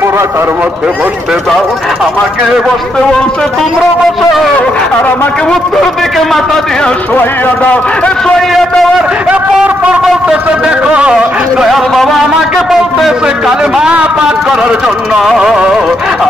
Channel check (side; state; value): both; normal; correlation 0.78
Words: মধ্যে বসতে দাও। আমাকে বসতে বলছে, তোমরা বসো, আর আমাকে উত্তর দিকে মাথা দিয়ে শোয়াইয়া দাও। শোয়াইয়া দেওয়ার পর বলতেছে, দেখো দয়াল বাবা আমাকে বলতেছে কালেমা পাঠ করার জন্য।